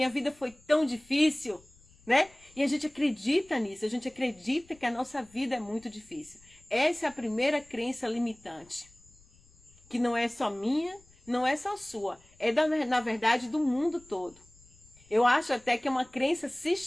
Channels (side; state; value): left; noise; rumble, 28 dB below the sound